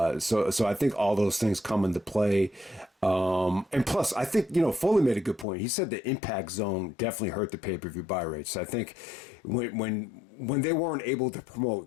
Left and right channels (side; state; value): right; drops out; at 5.5 s